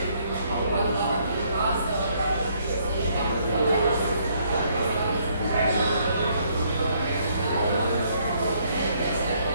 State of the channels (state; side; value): inverted; both; correlation -0.68